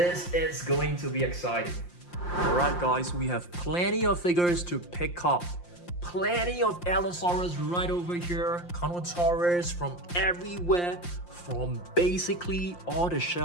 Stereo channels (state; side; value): late; right; 5.7 ms